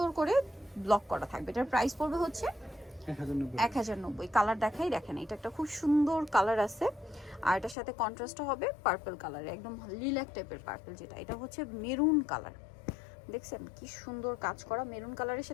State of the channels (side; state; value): right; drops out; at 7.8 s